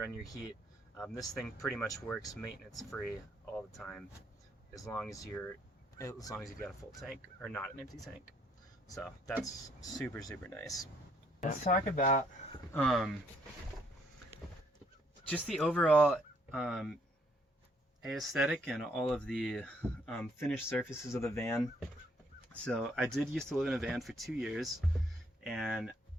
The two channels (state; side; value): normal; both; correlation 0.68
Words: your heat. This thing pretty much works maintenance free all the time, as long as you've got a full tank or not an empty tank. So that's super nice. Let's talk about just the overall aesthetic and all of the finished surfaces of the van. So I did used to live in a van for 2 years, and